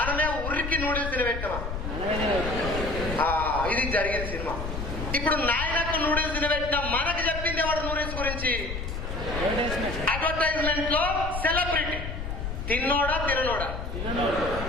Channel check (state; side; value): noise; left; rumble, 5 dB below the sound